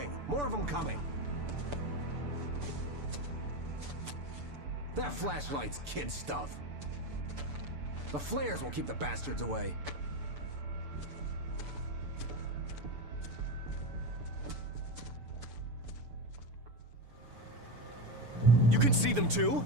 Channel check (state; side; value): late; left; 6.9 ms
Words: More of them coming. That flashlight's kid stuff. The flares will keep the bastards away. You can see them too?